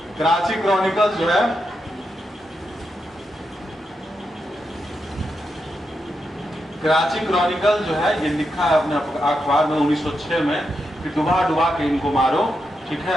कराची क्रॉनिकल्स जो है कराची क्रॉनिकल जो है ये लिखा है अपने अखबार में 1906 में कि डुबा डुबा के इनको मारो, ठीक है।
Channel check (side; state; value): both; normal; correlation 0.85